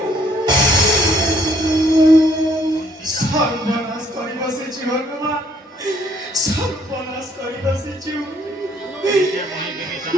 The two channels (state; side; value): normal; both; correlation 0.65